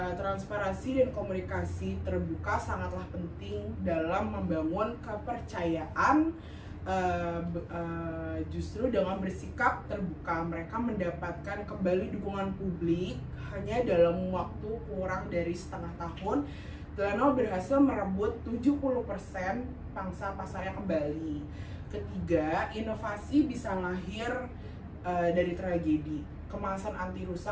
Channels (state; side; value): identical; both; correlation 1.00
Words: transparansi dan komunikasi terbuka sangatlah penting dalam membangun kepercayaan. Justru dengan bersikap terbuka, mereka mendapatkan kembali dukungan publik. Hanya dalam waktu kurang dari setengah tahun, Tylenol berhasil merebut 70% pangsa pasarnya kembali. Ketiga, inovasi bisa lahir dari tragedi. Kemasan anti